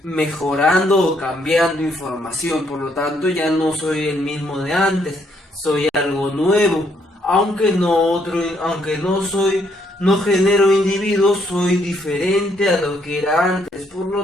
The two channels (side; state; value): both; normal; correlation 0.71